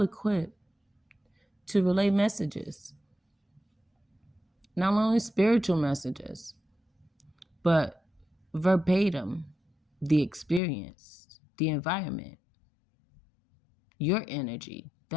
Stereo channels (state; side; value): drops out; right; at 10.6 s